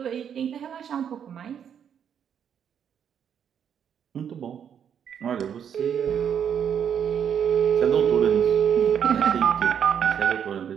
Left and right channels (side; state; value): left; quieter; 8.3 dB